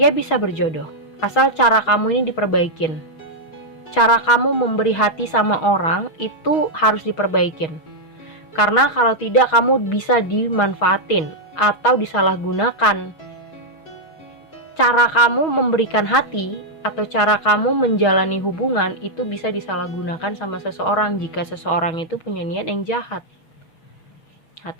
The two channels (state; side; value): late; right; 6.3 ms